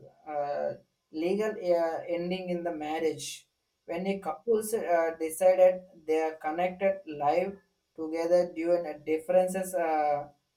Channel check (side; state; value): both; identical; correlation 1.00